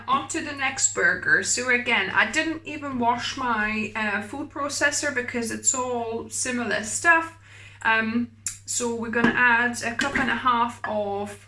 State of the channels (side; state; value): both; identical; correlation 1.00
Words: on to the next burger. So again, I didn't even wash my food processor because it's all similar stuff. So we're gonna add a cup and a half of